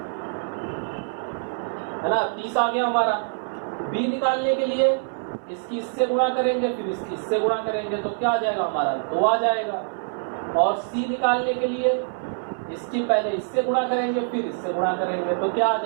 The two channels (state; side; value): silent; left; 62 dB below the other